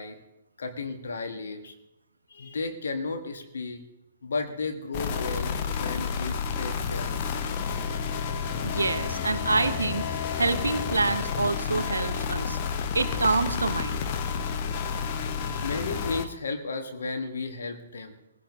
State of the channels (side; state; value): both; inverted; correlation -0.68